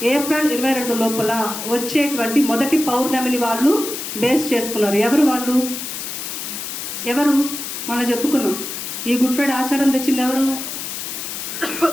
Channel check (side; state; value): left; noise; hiss, 6 dB below the sound